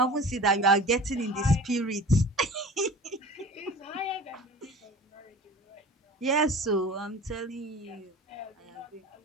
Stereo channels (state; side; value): normal; both; correlation 0.40